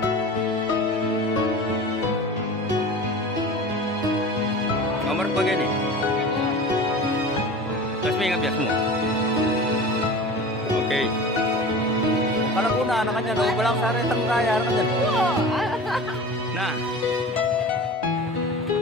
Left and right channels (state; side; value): normal; both; correlation 0.36